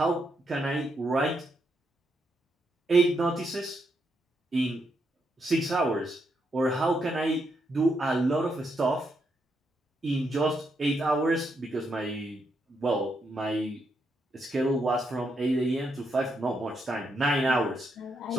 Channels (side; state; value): both; normal; correlation 0.80